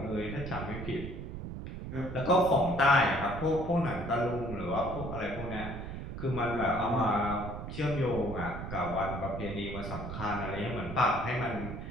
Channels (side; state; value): right; noise; rumble, 8 dB below the sound